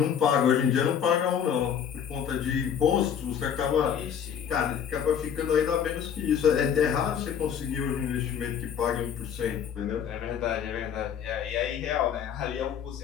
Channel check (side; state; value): right; quieter; 8.2 dB